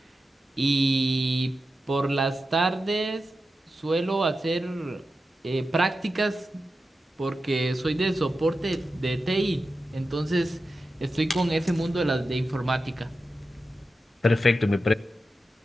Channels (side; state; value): both; normal; correlation 0.91